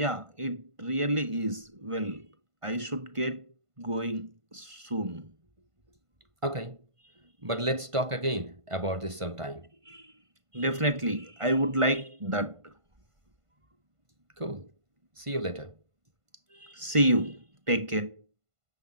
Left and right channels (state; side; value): late; left; 1.5 ms